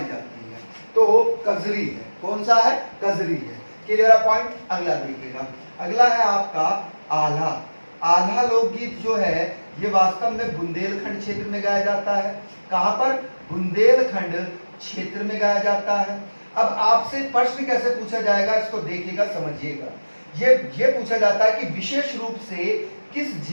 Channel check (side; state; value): both; inverted; correlation -1.00